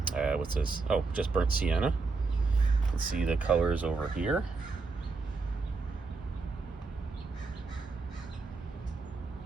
what's this? Oh, just burnt sienna. You can see the colors over here.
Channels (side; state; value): left; quieter; 4.1 dB